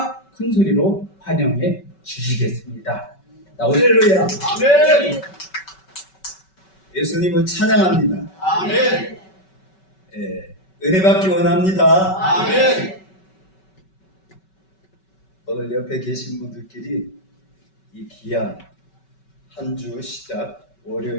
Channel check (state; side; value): late; right; 5.3 ms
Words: 큰 소리로 환영해 주시겠습니다. 할렐루야. 아멘. 예수님을 찬양합니다. 아멘. 은혜 받기 원합니다. 아멘. 오늘 옆에 계신 분들끼리 이 귀한 한 주 시작